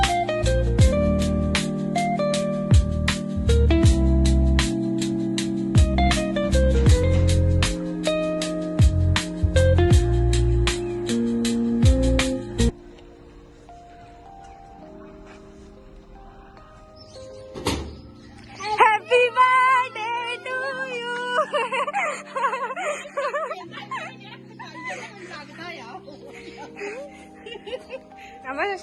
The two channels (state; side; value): identical; both; correlation 1.00